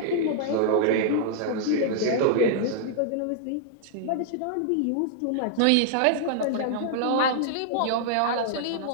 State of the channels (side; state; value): both; different; correlation -0.01